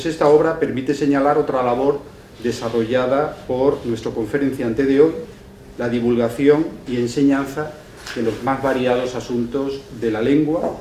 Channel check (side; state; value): both; identical; correlation 1.00